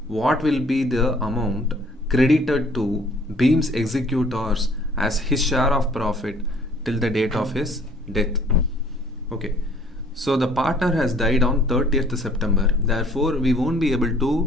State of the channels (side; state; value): both; normal; correlation 0.57